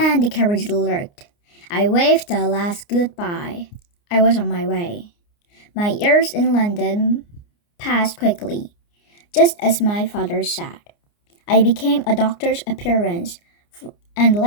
the carriage lurched. I waved a last goodbye. I was on my way. My years in London passed quickly, just as my father said. I became a doctor's apprentice, and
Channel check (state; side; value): late; right; 29 ms